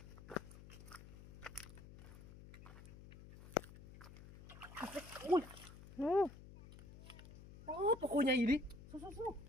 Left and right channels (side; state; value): left; noise; hum, 16 dB below the sound